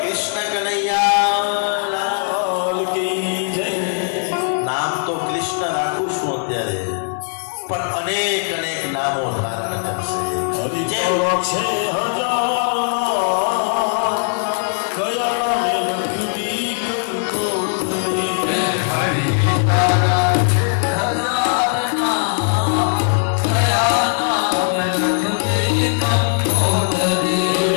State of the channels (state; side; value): silent; right; digital silence